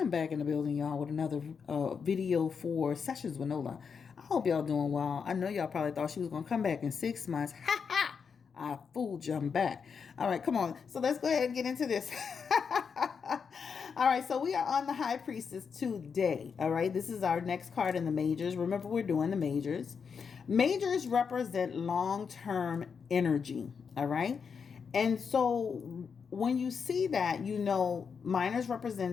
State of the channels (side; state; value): right; quieter; 6.1 dB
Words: back in the building, y'all, with another video for Sessions with Nola. I hope y'all doing well. I know y'all probably thought she was going to come back in 6 months. Ha ha! I fooled you. I'm back. All right, come on. So let's go ahead and get into this. All right, so we are on the High Priestess today. All right, this is our next card in the majors. Remember, we're doing the majors. Majors represent long-term energy. All right. And so when you see that, you know, minors